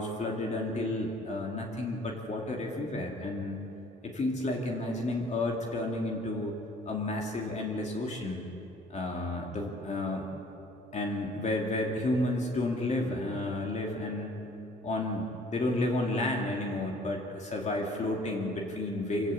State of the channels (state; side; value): normal; both; correlation 0.55